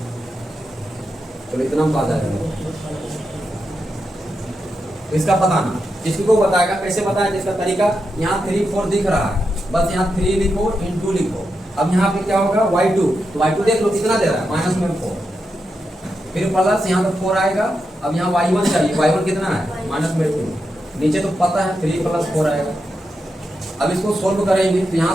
चलो इतना हम पा जाएगा। इसका पता ना, इसको बताएगा कैसे बताया, जिसका तरीका यहाँ 3 4 दिख रहा है, बस यहाँ 3 लिखो इंटू लिखो। अब यहाँ पे क्या होगा y2, तो y2 देख लो कितना दे रहा है माइनस में 4, फिर प्लस यहाँ पे 4 आएगा। अब यहाँ y1 चाहिए, y1 कितना है माइनस में 2, नीचे तो पता है 3 + 4 आएगा। अब इसको सोल्व करेंगे तो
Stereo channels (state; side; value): normal; both; correlation 0.86